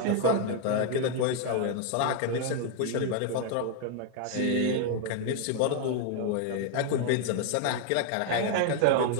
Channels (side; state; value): both; different; correlation 0.00